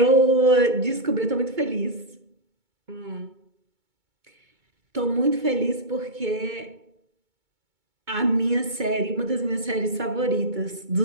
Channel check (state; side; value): late; left; 2.2 ms